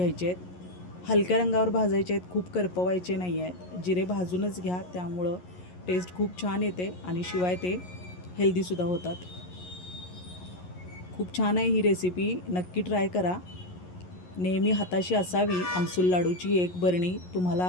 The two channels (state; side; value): late; right; 11 ms